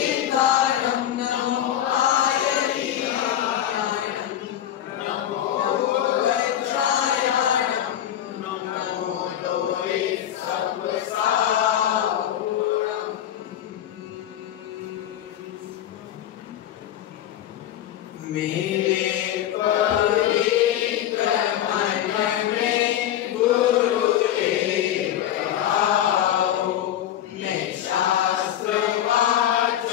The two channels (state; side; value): quieter; right; 11.3 dB